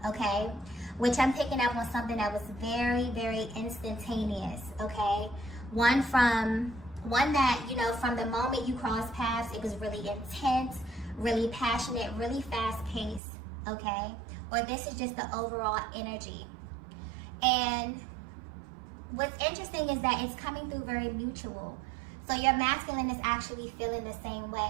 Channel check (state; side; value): drops out; left; at 13.2 s